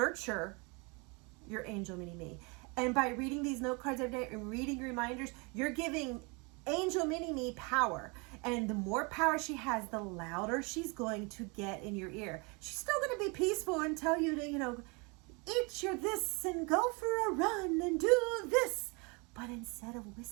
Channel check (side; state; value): left; quieter; 30.3 dB